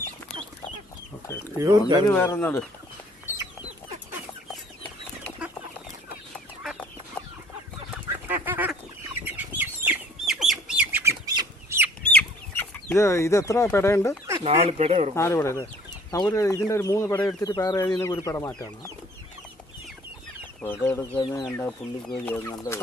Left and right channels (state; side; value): normal; both; correlation 0.55